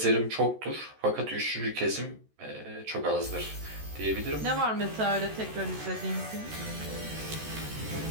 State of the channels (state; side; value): late; left; 14 ms